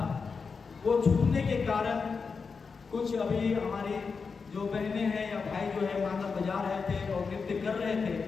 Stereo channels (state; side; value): quieter; right; 5.1 dB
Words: वो छूटने के कारण कुछ अभी हमारे जो बहनें हैं या भाई जो है मांदर बजा रहे थे और नृत्य कर रहे थे।